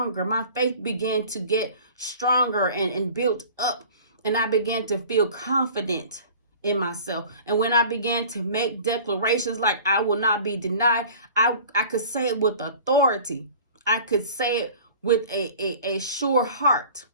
My faith began to get stronger and built up. And I began to feel confident in myself. And when I began to make declarations like I will not be denied, I could say it with authority. I could say it with a sure heart.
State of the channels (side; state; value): both; inverted; correlation -0.44